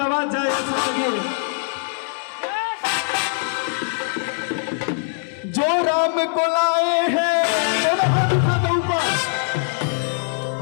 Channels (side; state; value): right; silent; digital silence